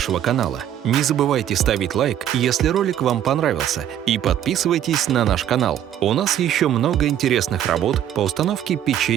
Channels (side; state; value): left; quieter; 10.7 dB